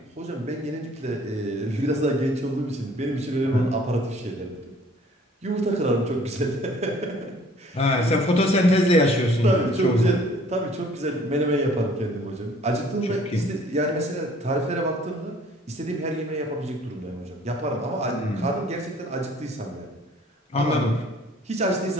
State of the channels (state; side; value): normal; both; correlation 0.55